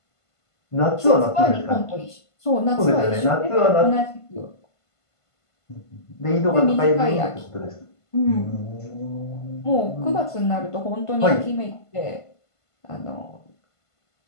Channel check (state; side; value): late; right; 1.5 ms